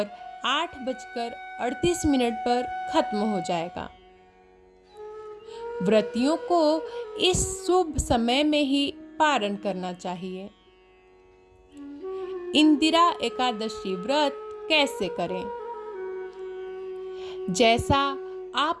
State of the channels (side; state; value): both; identical; correlation 1.00